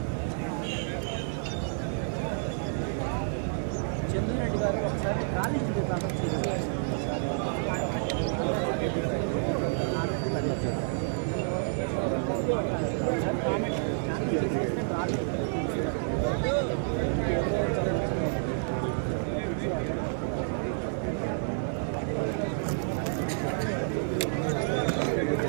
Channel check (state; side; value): silent; left; 58 dB below the other